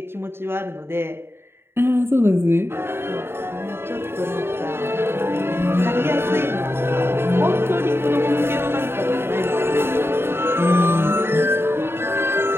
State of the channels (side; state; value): left; late; 0.11 ms